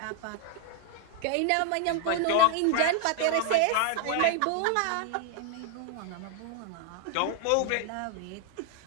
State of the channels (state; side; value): different; both; correlation 0.00